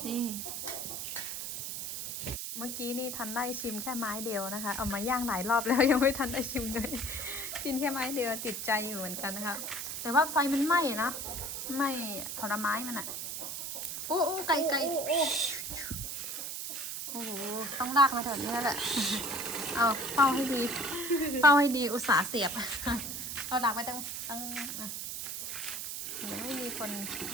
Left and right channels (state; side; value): noise; right; hiss, 5 dB below the sound